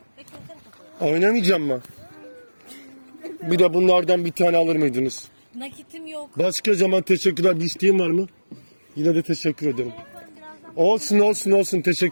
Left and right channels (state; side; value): inverted; both; correlation -1.00